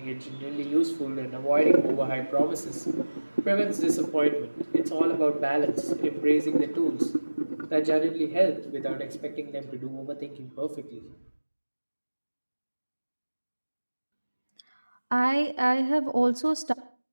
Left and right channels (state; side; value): inverted; both; correlation -1.00